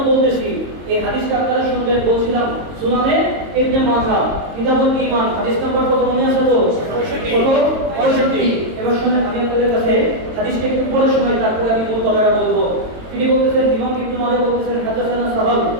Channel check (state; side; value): late; left; 22 ms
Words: বলতেছি, এই হাদিসটা আপনারা শুনবেন। বলছিলাম সুনানে ইবনে মাজাহ কিতাবুল ঈমান হাদিস নাম্বার কত মনে আছে তো? 65। এবার শুনেন, আমি আপনাদের কাছে হাদিসটা একটু পড়ে শোনাই, তারপরে আমি মূল কথাটা বলবো। তিনি বলতেছেন, ইমাম ইবনে মাজাহ বলতেছেন, হাদাসানা সাহাল